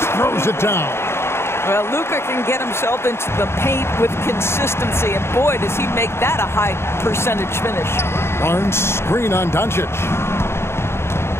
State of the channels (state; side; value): late; right; 0.12 ms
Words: throws it down. Well, Luka can get himself into the paint with consistency. And boy, does he make that a high percentage finish. Barnes screen on Doncic.